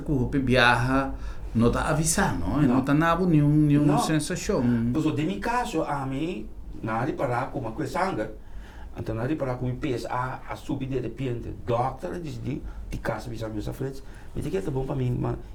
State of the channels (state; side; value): identical; both; correlation 1.00